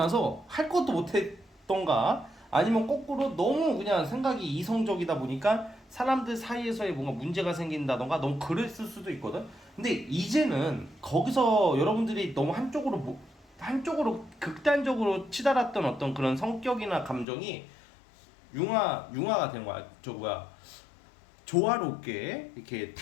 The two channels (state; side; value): drops out; right; at 17.2 s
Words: 할 것도 못했던가 아니면 거꾸로 너무 그냥 생각이 이성적이다 보니까 사람들 사이에서의 뭔가 문제가 생긴다던가 너무 그랬을 수도 있거든. 근데 이제는 거기서 여러분들이 너무 한쪽으로 극단적으로 치달았던 어떤 그런 성격이나 감정이 융화가 된 거야. 저 뭐야 조화롭게 이렇게